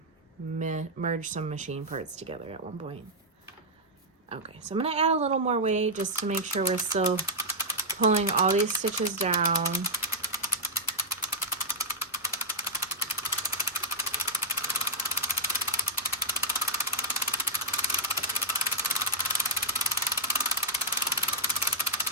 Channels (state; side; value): normal; both; correlation -0.06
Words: merge some machine parts together at one point. Okay, so I'm going to add a little more weight just to make sure we're still pulling all these stitches down.